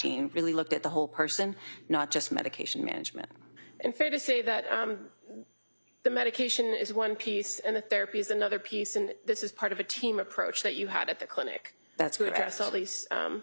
really looked at the whole person, not just medication management. And fair to say that the medication is one piece and the therapy is another piece, and this is part of a team approach that you had at the clinic. That's to correct. Address all these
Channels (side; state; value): both; inverted; correlation -1.00